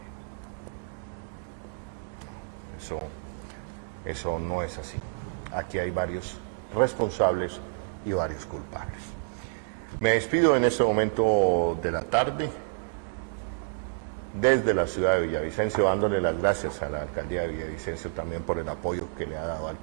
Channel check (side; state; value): left; silent; digital silence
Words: Eso no es así. Aquí hay varios responsables y varios culpables. Me despido en este momento de la tarde desde la ciudad de Villavicencio, dándole las gracias a la alcaldía de Villavicencio también por el apoyo que le ha dado al